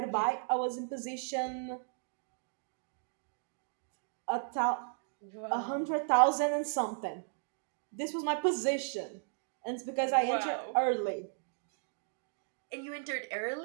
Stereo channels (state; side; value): silent; left; digital silence